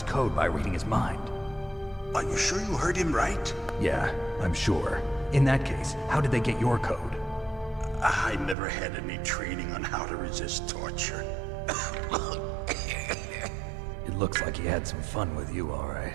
code by reading his mind. Are you sure you heard him right? Yeah, I'm sure. In that case, how did they get your code? I never had any training on how to resist torture. It looks like he had some fun with you, all right.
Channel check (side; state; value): left; drops out; at 8.6 s